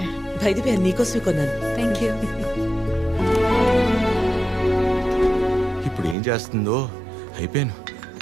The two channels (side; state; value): left; drops out; at 6.2 s